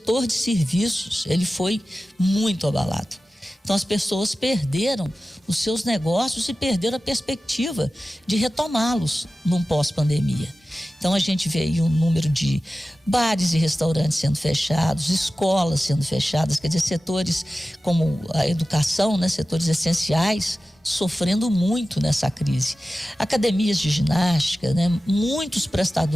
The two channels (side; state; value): both; normal; correlation 0.95